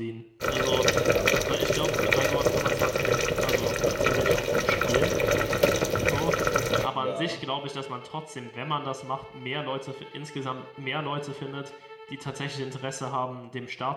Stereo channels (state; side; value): identical; both; correlation 1.00